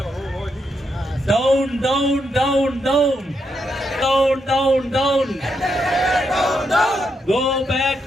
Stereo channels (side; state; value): both; normal; correlation 0.80